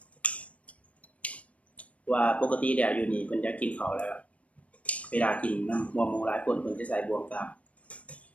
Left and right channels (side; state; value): right; late; 0.065 ms